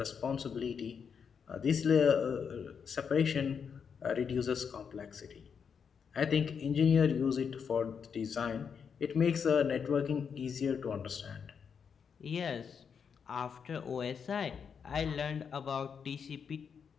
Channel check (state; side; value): quieter; right; 6.7 dB